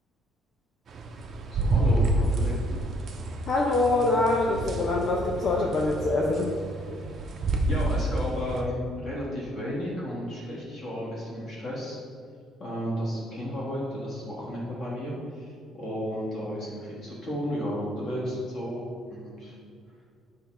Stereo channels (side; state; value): both; normal; correlation 0.65